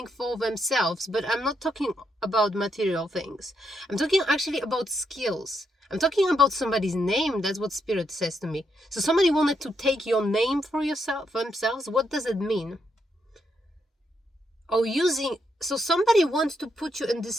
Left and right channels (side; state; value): both; normal; correlation 0.79